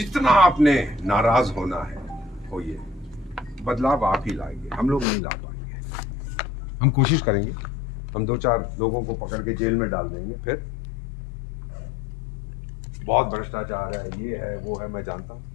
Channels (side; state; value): right; drops out; at 5.1 s